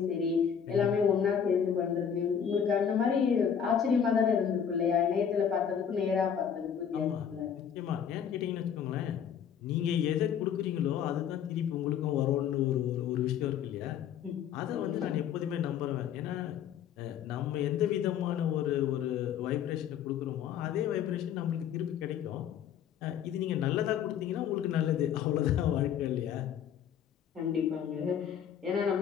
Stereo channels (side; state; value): right; quieter; 8.3 dB